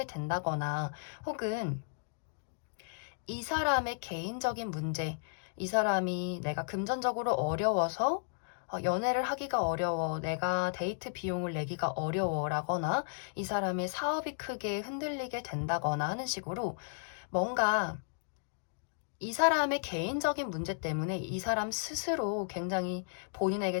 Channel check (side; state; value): right; silent; digital silence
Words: 된다거나, 혹은 이 사람의 개인적인 문제, 이 사람이 내가 금전적으로 어려워서 연애를 하기가 어려워, 내가 데이트 비용을 내기가 어려워라거나, 이 사람의 사업이 크게 흔들리게 된다거나 하는 식으로 뭔가 이 사람의 개인적인 문제 때문에 이 사람 스스로 굉장히 본인에게